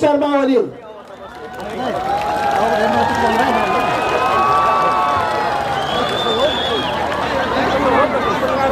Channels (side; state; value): both; identical; correlation 1.00